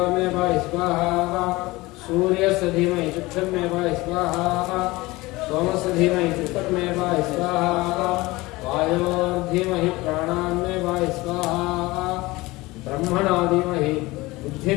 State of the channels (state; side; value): quieter; right; 21.0 dB